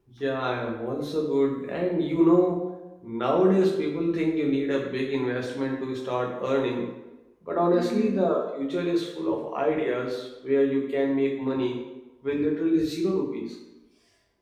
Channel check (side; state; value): both; identical; correlation 1.00